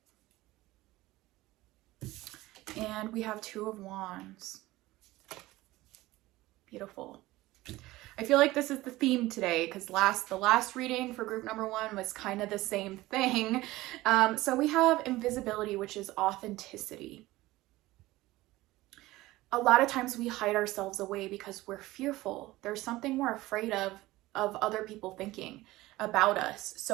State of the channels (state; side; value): quieter; left; 18.2 dB